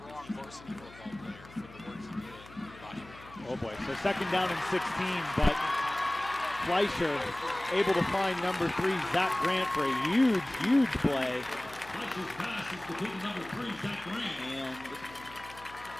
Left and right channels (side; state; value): left; noise; hum, 20 dB below the sound